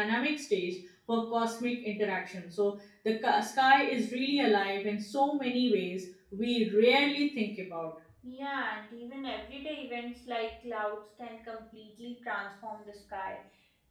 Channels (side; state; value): both; identical; correlation 1.00